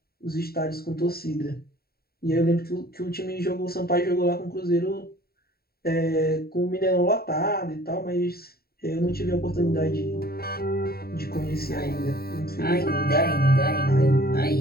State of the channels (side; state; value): right; late; 0.45 ms